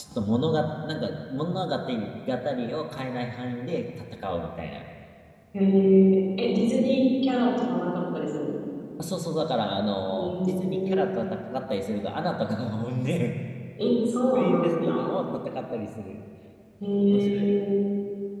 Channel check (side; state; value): both; identical; correlation 1.00